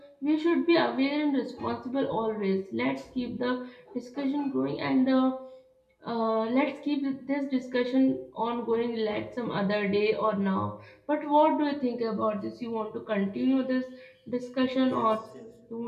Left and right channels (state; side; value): identical; both; correlation 1.00